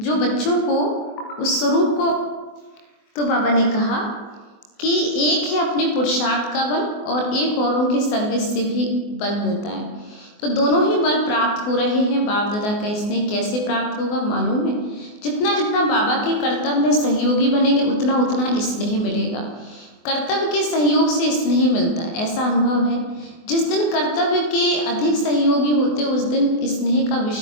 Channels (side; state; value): right; late; 24 ms